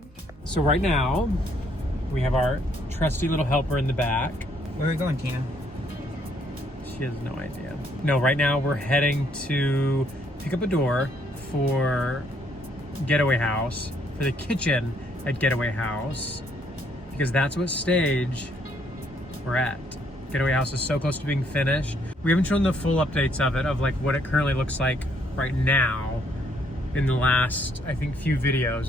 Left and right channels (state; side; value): normal; both; correlation 0.69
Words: So right now, we have our trusty little helper in the back. Where are we going, Tina? She has no idea. No, right now we're heading to pick up a door for Getaway House, for the kitchen at Getaway House, because that's what stage we're at. Getaway House is so close to being finished. We haven't shown the full updates of it, of like what it currently looks like right now in the last, I think, few